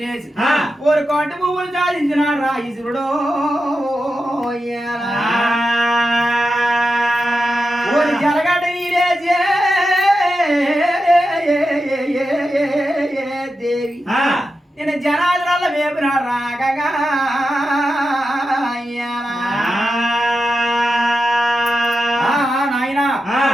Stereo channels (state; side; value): normal; both; correlation 0.90